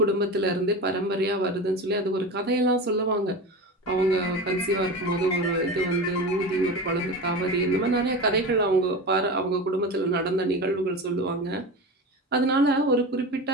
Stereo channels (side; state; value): both; normal; correlation 0.27